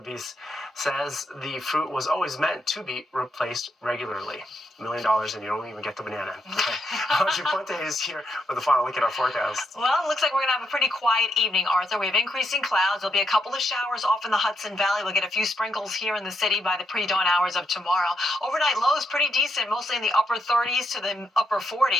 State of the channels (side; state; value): both; normal; correlation 0.79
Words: says the fruit was always meant to be replaced regularly. $1 million and you don't even get the banana. Okay. Audrey Puente is here with a final look at our forecast. Well, it looks like we're going to have a pretty quiet evening, Arthur. We have increasing clouds. There'll be a couple of showers off in the Hudson Valley. We'll get a few sprinkles here in the city by the pre-dawn hours of tomorrow. Overnight lows pretty decent, mostly in the upper 30s to the upper